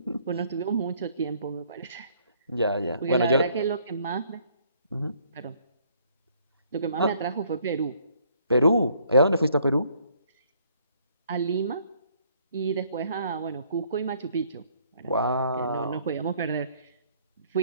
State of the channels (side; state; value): both; inverted; correlation -0.63